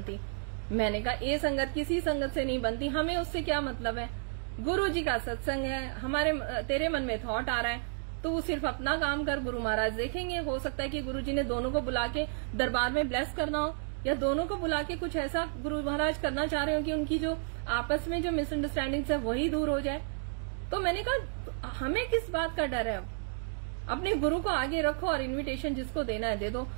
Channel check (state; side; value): silent; left; digital silence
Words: मैंने कहा ए संगत की सी संगत से नहीं बनती, हमें उससे क्या मतलब है? गुरुजी का सत्संग है, तेरे मन में थॉट आ रहा है तो वो सिर्फ अपना काम कर, गुरु महाराज देखेंगे। हो सकता है कि गुरुजी ने दोनों को बुला के दरबार में ब्लेस करना हो, या दोनों को बुला के कुछ ऐसा गुरु महाराज करना चाह रहे हो कि उनकी जो आपस में जो मिसअंडरस्टैंडिंग है वही दूर हो जाए। तो मैंने कहा हमें किस बात का डर है? अपने गुरु को आगे रखो और इनविटेशन जिसको देना है दे दो।